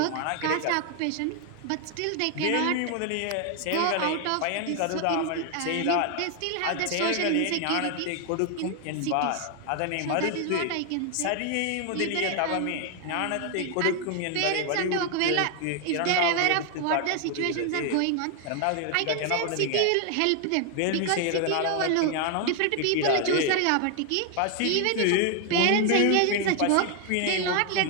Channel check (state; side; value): different; both; correlation 0.00